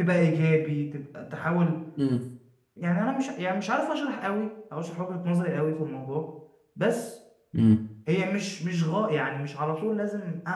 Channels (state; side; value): identical; both; correlation 1.00